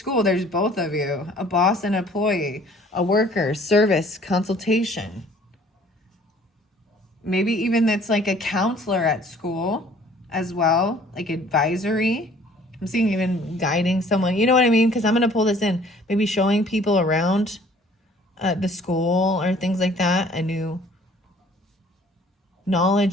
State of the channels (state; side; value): normal; both; correlation 0.55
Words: there's both of you, a boss and employee, a worker, service, consultation. Maybe even that's like a counselor at school as well, like advisory. I'm seeing even guiding someone, you know what I mean? Because I'm going to pull this in, maybe showing people around the school or things like that, a new